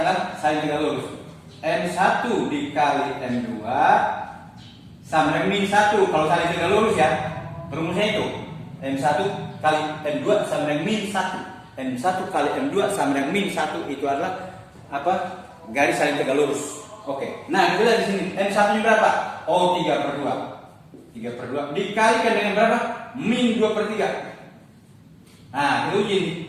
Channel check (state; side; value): identical; both; correlation 1.00